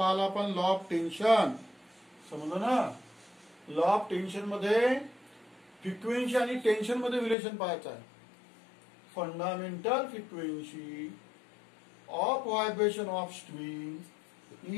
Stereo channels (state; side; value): drops out; right; at 7.4 s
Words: आपण लॉ ऑफ टेन्शन. समजलं ना. लॉ ऑफ टेन्शन मध्ये फ्रिक्वेन्सी आणि टेन्शन मध्ये रिलेशन पाहायचं आहे. Fundamental frequency of vibration of string